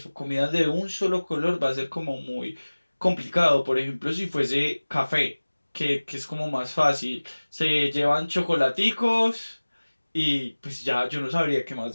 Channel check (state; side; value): inverted; both; correlation -1.00